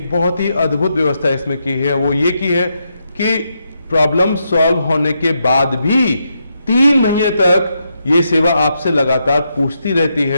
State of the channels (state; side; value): inverted; both; correlation -0.82